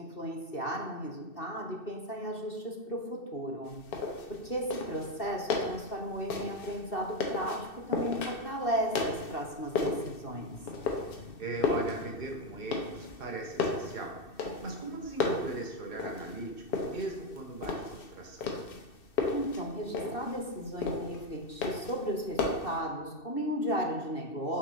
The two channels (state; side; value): late; right; 2.6 ms